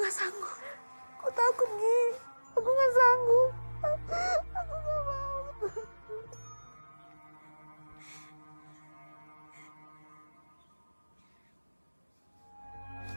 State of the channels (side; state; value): both; inverted; correlation -1.00